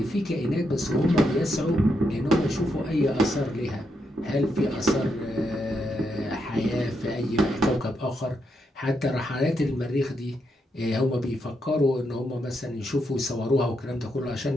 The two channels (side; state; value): both; normal; correlation 0.81